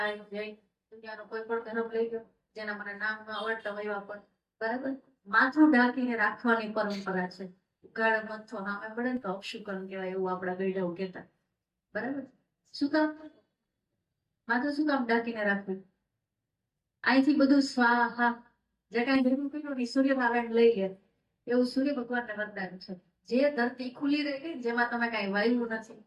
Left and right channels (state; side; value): identical; both; correlation 1.00